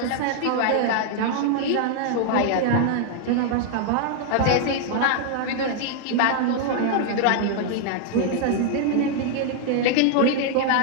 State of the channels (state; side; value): different; both; correlation 0.00